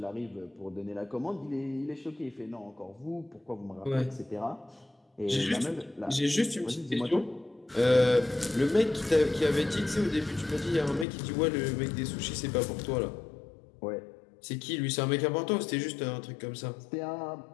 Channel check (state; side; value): drops out; right; at 11.1 s